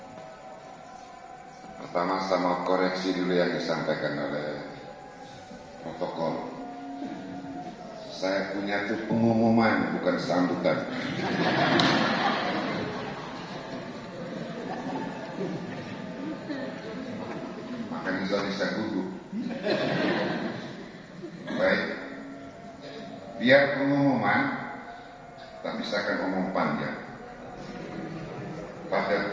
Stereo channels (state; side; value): identical; both; correlation 1.00